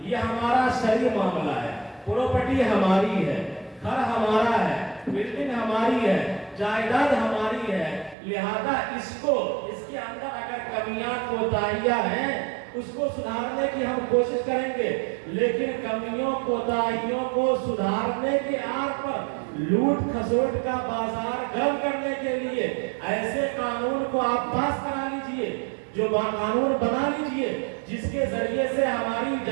ये हमारा शरई मामला है, प्रॉपर्टी हमारी है, घर हमारा है, बिल्डिंग हमारी है, जायदाद हमारी है, लिहाजा इसके अंदर अगर कमियां कोताहियां हैं उसको सुधारने की हम कोशिश करेंगे, लेकिन कमियों कोताहियों को सुधारने के आड़ पर लूट खसोट का बाजार गर्म करने के लिए ऐसे कानून को आप पास करा लीजिए, जो कानून बना लीजिए जिसके जरिए से हमारी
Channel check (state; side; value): drops out; left; at 8.2 s